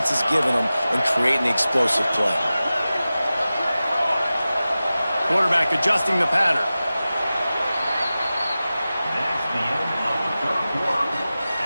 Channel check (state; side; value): inverted; both; correlation -0.95